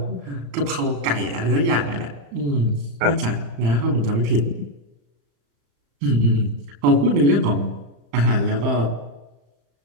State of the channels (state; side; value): late; left; 35 ms